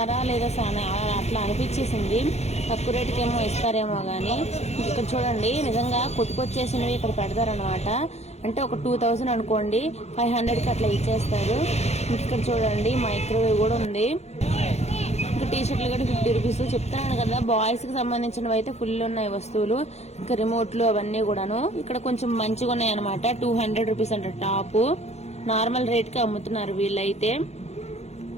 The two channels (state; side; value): late; right; 0.31 ms